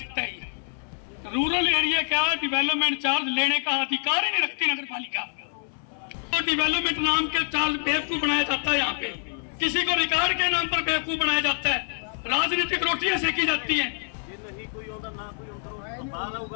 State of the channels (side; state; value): right; silent; 61 dB below the other